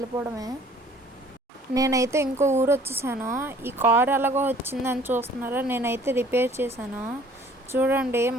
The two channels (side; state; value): both; normal; correlation 0.54